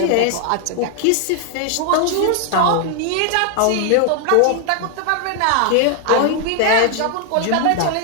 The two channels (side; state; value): both; different; correlation 0.00